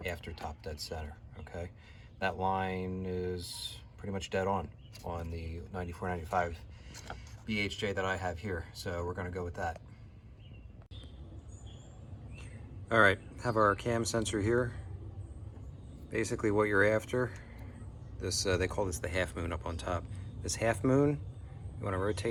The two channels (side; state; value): both; identical; correlation 1.00